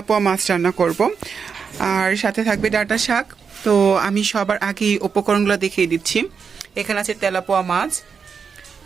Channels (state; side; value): quieter; left; 6.0 dB